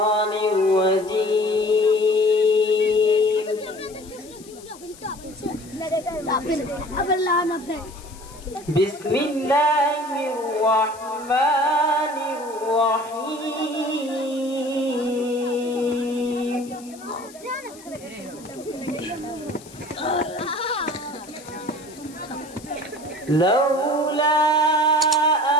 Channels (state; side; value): noise; left; hiss, 21 dB below the sound